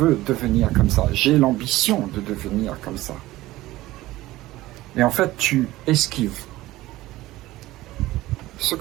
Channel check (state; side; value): quieter; left; 17.2 dB